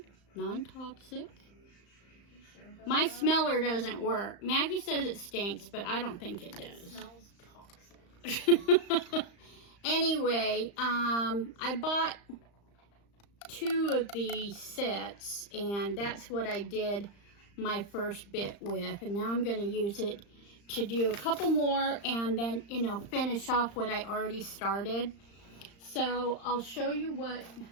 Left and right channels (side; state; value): right; late; 35 ms